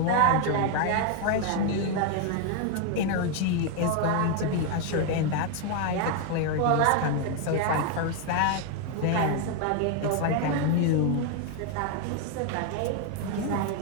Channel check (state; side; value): different; both; correlation 0.01